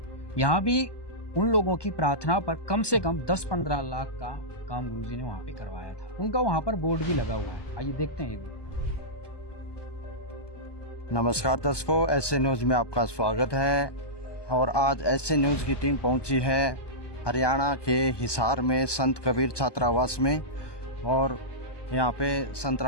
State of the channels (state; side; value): late; right; 1.2 ms